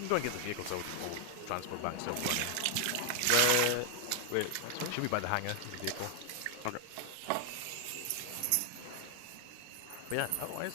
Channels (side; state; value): both; different; correlation 0.00